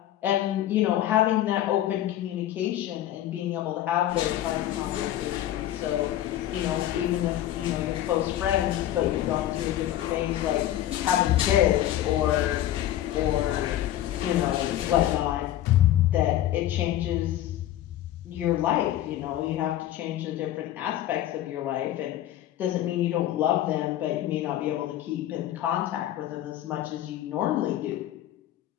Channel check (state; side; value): quieter; right; 12.8 dB